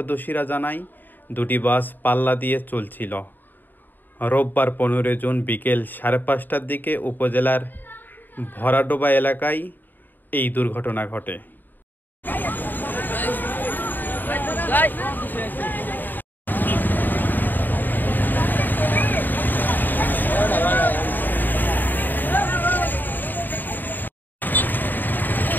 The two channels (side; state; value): right; late; 0.090 ms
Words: জানায়, দুটি বাস পাল্লা দিয়ে চলছিল। রোববার ১৫ জুন বিকেল ৫:৩০টার দিকে উপজেলার ভরাডোবা এলাকায় এই দুর্ঘটনা ঘটে।